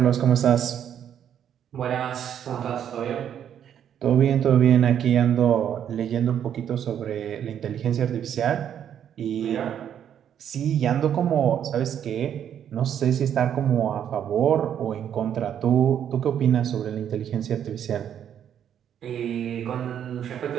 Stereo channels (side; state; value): left; quieter; 9.4 dB